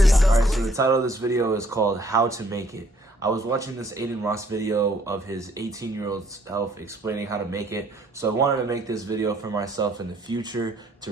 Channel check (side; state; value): both; normal; correlation 0.64